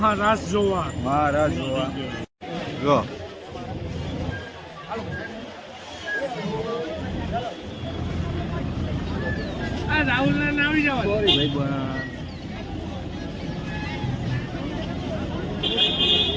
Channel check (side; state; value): both; identical; correlation 1.00